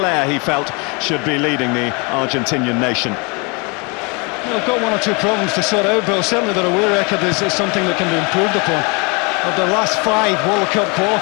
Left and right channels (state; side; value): quieter; right; 30.8 dB